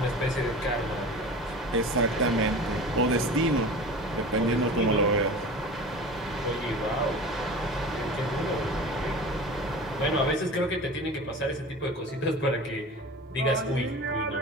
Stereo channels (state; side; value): normal; both; correlation 0.36